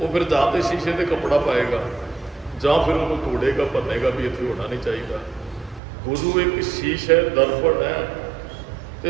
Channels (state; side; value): drops out; left; at 5.8 s